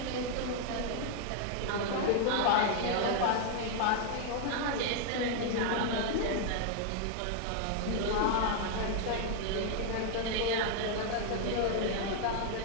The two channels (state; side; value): different; both; correlation 0.00